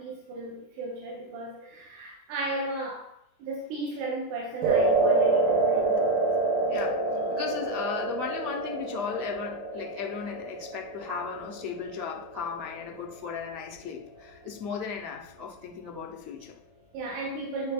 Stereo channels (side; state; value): left; late; 20 ms